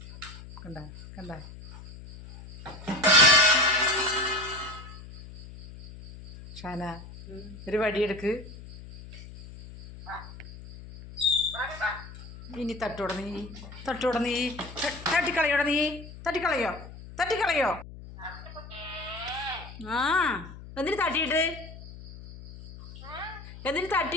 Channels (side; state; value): left; noise; hum, 15 dB below the sound